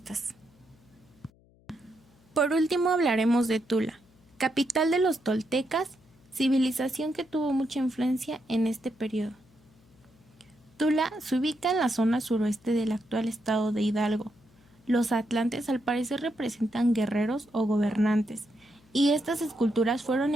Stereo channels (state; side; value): noise; left; hum, 30 dB below the sound